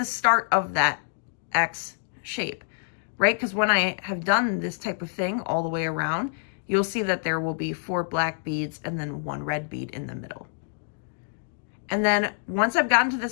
start of that X shape. right? Because when I have done this type of thing all the way around, you'll see that there will be 4 black beads and then 1 red bead in the middle. And then once I've gotten to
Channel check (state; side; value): silent; right; digital silence